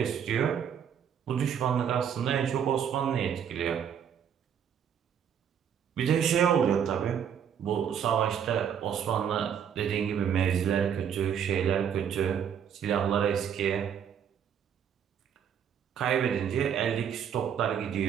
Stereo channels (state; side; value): quieter; left; 8.3 dB